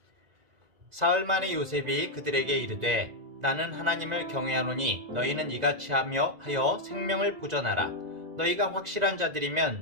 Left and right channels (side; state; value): left; late; 2.0 ms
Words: 사흘 만에 요셉이 그들에게 이르되 나는 하나님을 경외하노니 너희는 이같이 하여 생명을 보전하라. 너희가 확실한